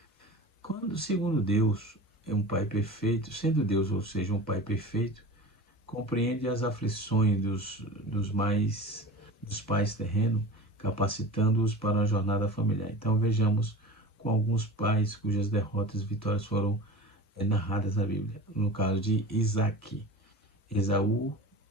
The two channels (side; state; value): both; normal; correlation 0.34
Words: Quando, segundo Deus, é um Pai perfeito, sendo Deus, ou seja, um Pai perfeito, compreende as aflições dos pais terrenos, capacitando-os para uma jornada familiar. Então vejamos com alguns pais cujas derrotas e vitórias foram narradas na Bíblia. No caso de Isaac, Esaú